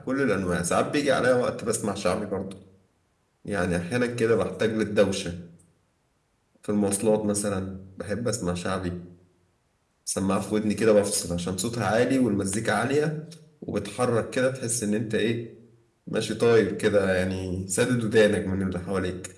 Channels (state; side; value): identical; both; correlation 1.00